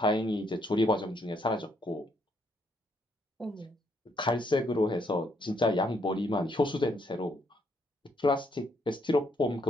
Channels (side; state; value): both; normal; correlation 0.72